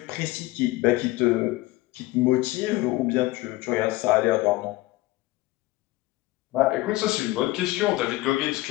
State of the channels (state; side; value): quieter; right; 19.0 dB